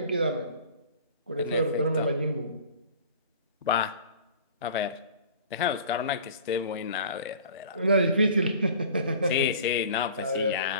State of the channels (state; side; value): inverted; both; correlation -0.45